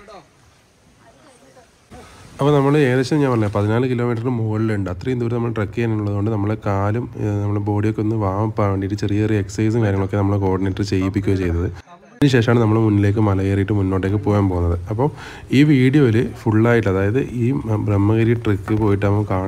അപ്പോൾ നമ്മൾ ഏകദേശം ഞാൻ പറഞ്ഞത് 14 കിലോമീറ്ററിന് മുകളിലുണ്ട്. അത്രയും ദൂരം നമ്മൾ ട്രക്ക് ചെയ്യാനുള്ളതുകൊണ്ട് നമ്മളെ കാലും നമ്മുടെ ബോഡിയൊക്കെ ഒന്ന് വാമപ്പാൻ വേണ്ടിയിട്ട് ചെറിയ ചെറിയ എക്സസൈസും കാര്യങ്ങളൊക്കെ നമ്മൾ കോർഡിനേറ്റർ ചെയ്യിപ്പിക്കുകയോ ചെയ്തത്. അതിനുശേഷമാണ് നമ്മൾ മുന്നിലേക്ക് മല കയറിയിട്ട് മുന്നോട്ടേക്ക് പോകാൻ പോകുന്നത്. അപ്പോൾ ഈ വീഡിയോയിൽ ഫുള്ളായിട്ട്, അതായത് ഈ ബ്രഹ്മഗിരി ട്രക്ക് പോയിട്ട് നമുക്ക്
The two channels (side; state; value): both; identical; correlation 1.00